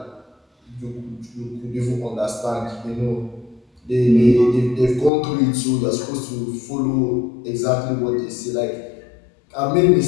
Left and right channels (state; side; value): drops out; right; at 5.1 s